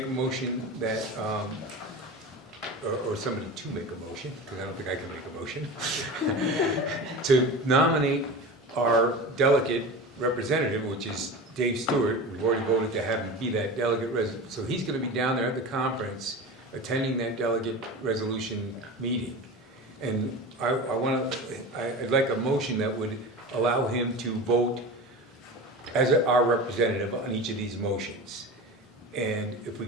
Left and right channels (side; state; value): both; normal; correlation 0.30